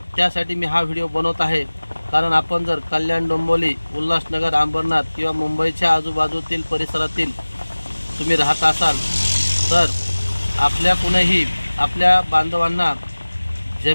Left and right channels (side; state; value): both; inverted; correlation -1.00